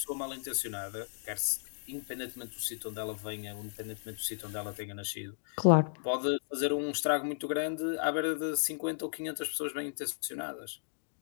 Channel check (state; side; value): silent; right; digital silence